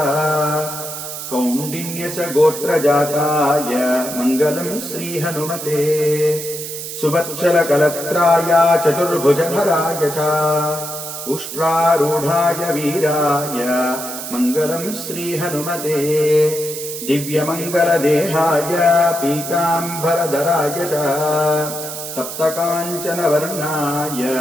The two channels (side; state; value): right; noise; hiss, 8 dB below the sound